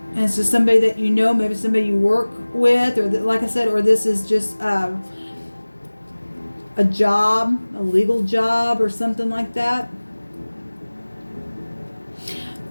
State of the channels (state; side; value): inverted; both; correlation -1.00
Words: and it's just somebody that maybe somebody you work with, or like I said, or this is just a job, a legal job or something like that.